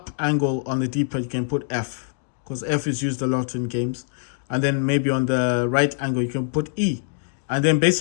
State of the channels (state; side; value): silent; right; digital silence